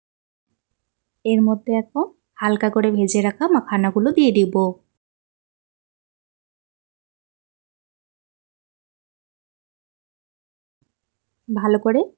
এর মধ্যে এখন হালকা করে ভেজে রাখা মাখানাগুলো দিয়ে দিব। ভালো করে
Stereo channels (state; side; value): silent; left; digital silence